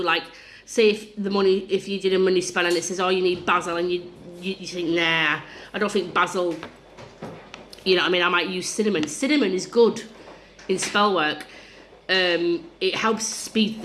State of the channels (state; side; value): identical; both; correlation 1.00